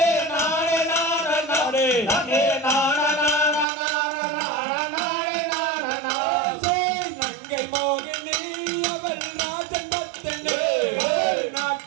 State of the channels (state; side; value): drops out; left; at 3.7 s